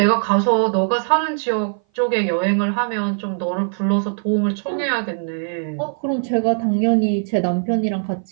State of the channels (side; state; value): left; silent; 59 dB below the other